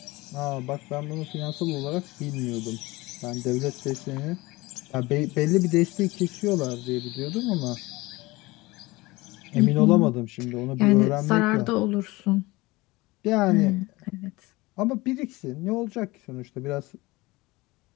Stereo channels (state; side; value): quieter; right; 21.5 dB